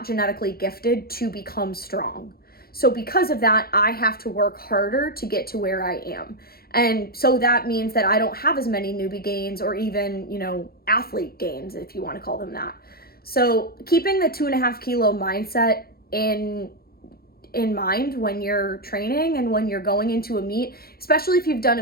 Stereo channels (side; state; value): right; late; 0.44 ms